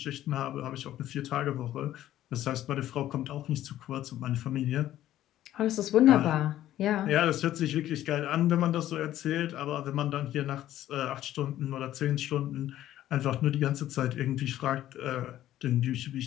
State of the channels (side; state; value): right; quieter; 13.1 dB